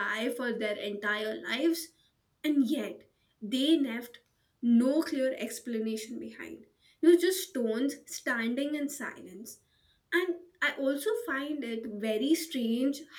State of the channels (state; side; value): identical; both; correlation 1.00